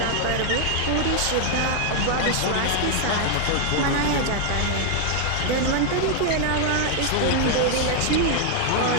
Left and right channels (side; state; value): both; different; correlation 0.00